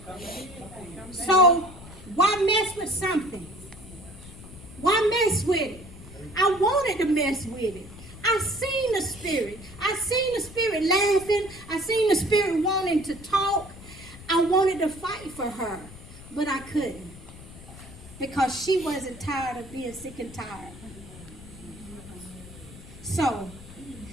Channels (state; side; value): noise; left; rumble, 17 dB below the sound